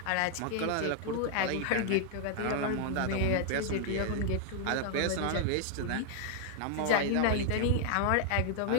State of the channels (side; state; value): both; different; correlation 0.00